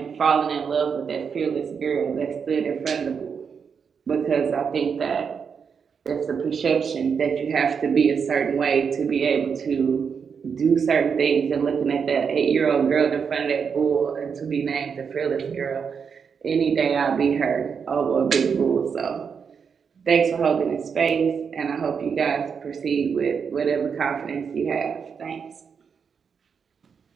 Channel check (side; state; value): left; quieter; 6.4 dB